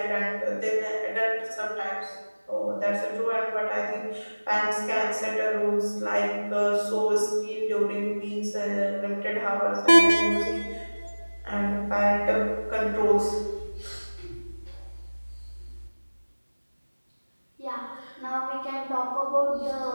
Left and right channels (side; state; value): both; inverted; correlation -1.00